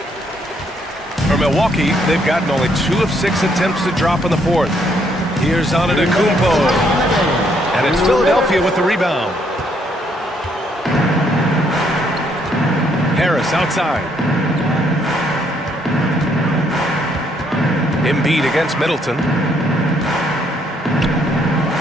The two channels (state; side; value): normal; both; correlation 0.70